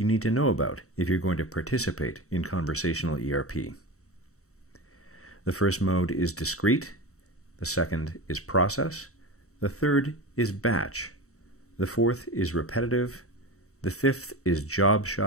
need to know about if you're going to participate in conversational ERP. The first mode is discrete, the second is process, the third is batch, the fourth is repetitive, the fifth is job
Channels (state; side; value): late; right; 0.64 ms